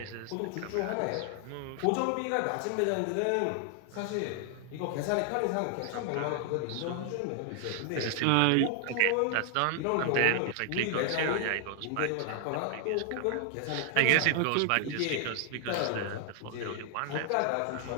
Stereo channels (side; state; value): both; different; correlation 0.00